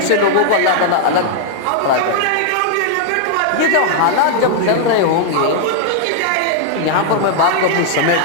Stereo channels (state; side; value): different; both; correlation 0.00